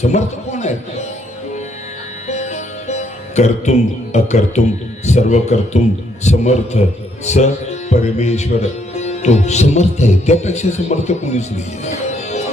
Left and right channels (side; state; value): both; normal; correlation 0.71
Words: समर्थ कोण आहे? कर्तुम अकर्तुम सर्व कर्तुम समर्थ स परमेश्वर. तो समर्थ आहे, त्यापेक्षा समर्थ कोणीच नाही.